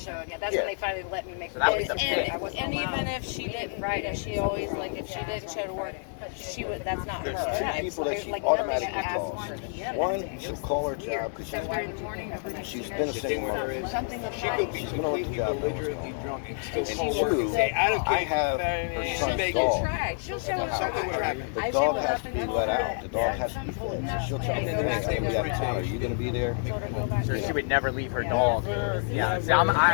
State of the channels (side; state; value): right; silent; 59 dB below the other